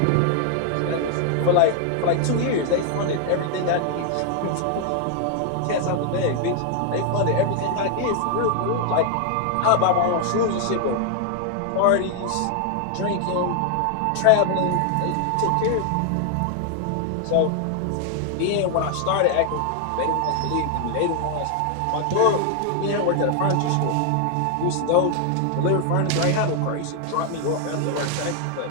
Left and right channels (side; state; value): both; different; correlation 0.00